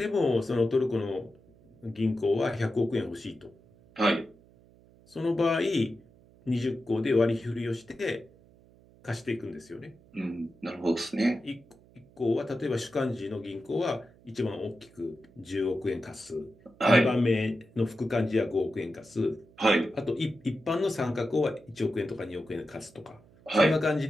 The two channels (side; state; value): right; noise; hum, 27 dB below the sound